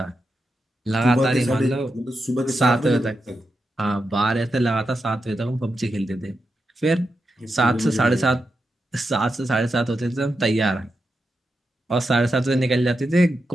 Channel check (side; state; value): both; normal; correlation 0.87